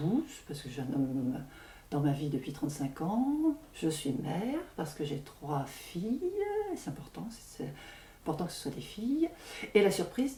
parce que j'ai un homme dans ma vie depuis 35 ans. Je suis mère, parce que j'ai 3 filles, c'est important que ce soit des filles. Et la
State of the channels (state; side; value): identical; both; correlation 1.00